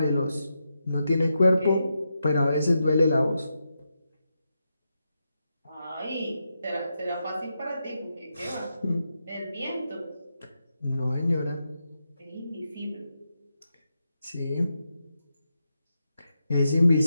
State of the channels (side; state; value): both; inverted; correlation -0.86